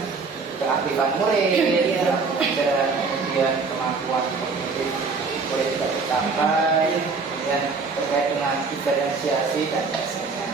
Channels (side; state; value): left; quieter; 4.5 dB